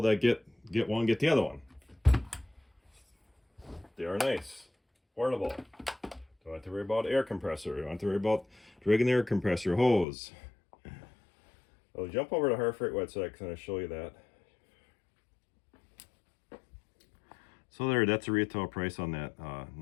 that get one get the other one. They are nice, portable. Don't have to worry about air compressor. Don't have to worry about dragging the air compressor hose. I'll jump over to Harbor Freight website because I'm going to show you that. So there, that's a retail price on that,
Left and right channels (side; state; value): right; drops out; at 10.1 s